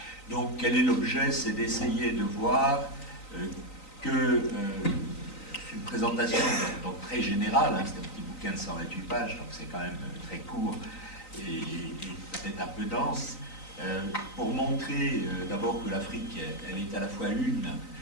Donc quel est l'objet? C'est d'essayer de voir que c'est une présentation donc très générale, hein, c'est un petit bouquin de 128 pages, donc c'est quand même très court et peut-être un peu dense. Pour montrer d'abord que l'Afrique, elle est à la fois une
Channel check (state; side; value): late; right; 3.9 ms